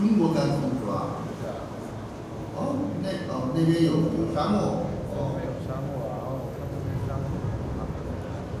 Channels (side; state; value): both; identical; correlation 1.00